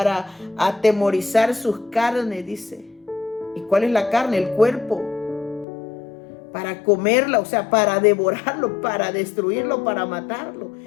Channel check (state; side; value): drops out; right; at 5.7 s